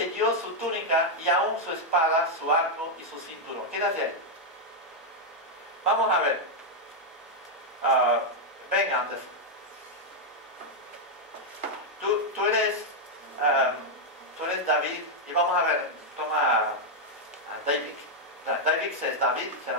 dio su túnica y aún su espada, su arco y su cinturón. ¿Qué hace? Vamos a ver. Ven antes. Tú eres David y vamos a ver. Toma a David. David es David, será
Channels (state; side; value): normal; both; correlation -0.01